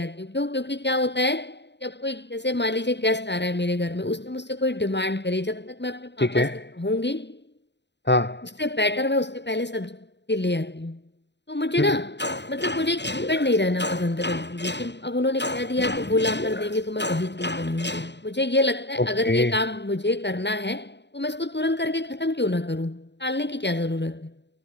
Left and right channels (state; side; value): late; right; 0.51 ms